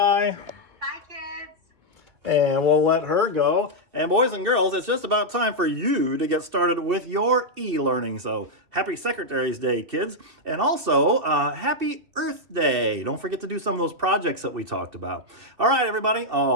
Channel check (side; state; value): left; late; 2.7 ms